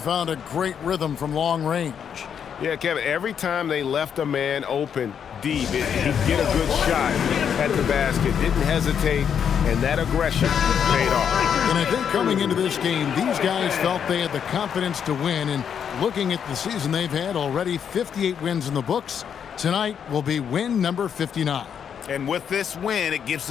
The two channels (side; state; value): right; quieter; 7.9 dB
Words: a great rhythm from long range. Yeah, Kevin, every time they left a man open deep, he'd get a good shot at the basket. Didn't hesitate, and that aggression paid off. And I think coming into this game, these guys felt they had the confidence to win. And looking at the season they've had, already 58 wins in the books. Tonight will be win number 59. And with this win, it gives